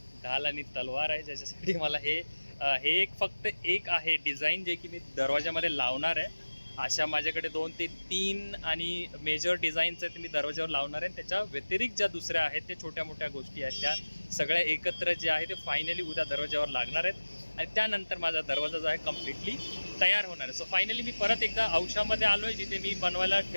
ढाल आणि तलवार आहे, ज्याच्यासाठी मला हे एक फक्त एक आहे डिझाईन जे की मी दरवाजामध्ये लावणार आहे। अशा माझ्याकडे 2 ते 3 आणि मेजर डिझाईन्स आहेत मी दरवाजावर लावणार आहे। त्याच्या व्यतिरिक्त ज्या दुसऱ्या आहेत ते छोट्या मोठ्या गोष्टी आहेत, त्या सगळ्या एकत्र जे आहे ते फायनली उद्या दरवाजावर लागणार आहेत आणि त्यानंतर माझा दरवाजा जो आहे कम्प्लिटली तयार होणार आहे। सो फायनली मी परत एकदा औषामध्ये आलो आहे जिथे मी बनवायला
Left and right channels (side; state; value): both; inverted; correlation -1.00